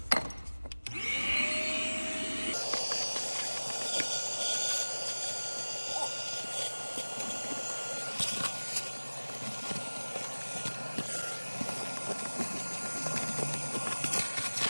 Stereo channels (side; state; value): both; inverted; correlation -1.00